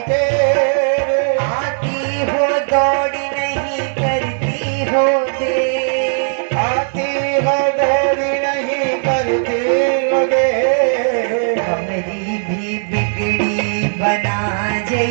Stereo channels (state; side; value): silent; left; digital silence